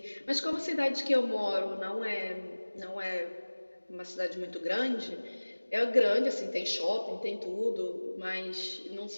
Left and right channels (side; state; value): both; inverted; correlation -1.00